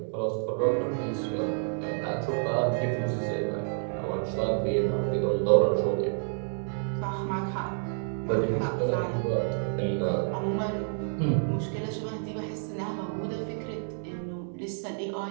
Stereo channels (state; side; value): silent; left; 58 dB below the other